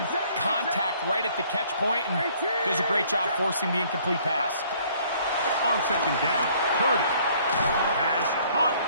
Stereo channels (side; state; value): both; inverted; correlation -0.60